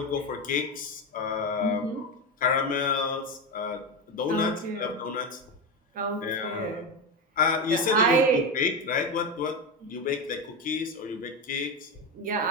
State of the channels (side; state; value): both; normal; correlation 0.15